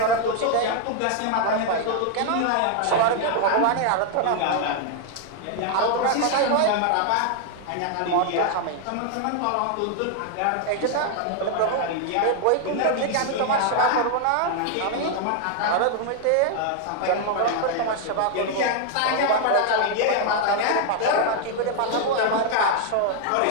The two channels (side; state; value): both; different; correlation 0.00